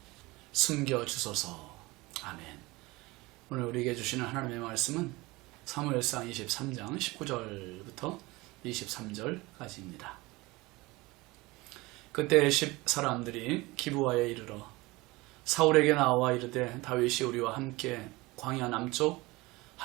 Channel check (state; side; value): quieter; left; 22.0 dB